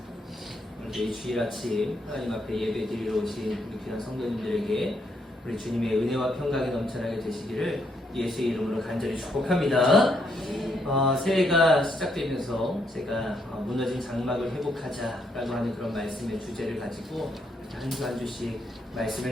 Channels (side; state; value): both; normal; correlation 0.75